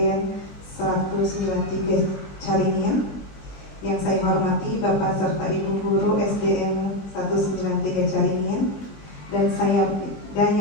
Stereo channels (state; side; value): late; right; 20 ms